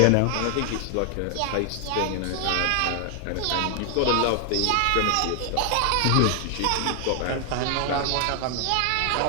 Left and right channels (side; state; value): both; different; correlation 0.00